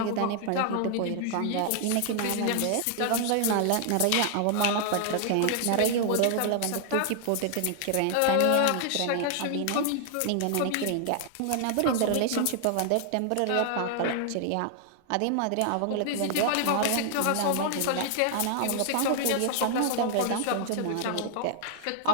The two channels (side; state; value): both; different; correlation 0.00